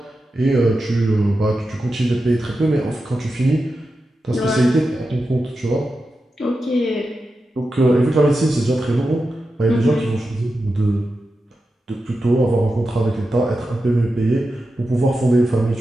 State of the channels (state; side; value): normal; both; correlation 0.90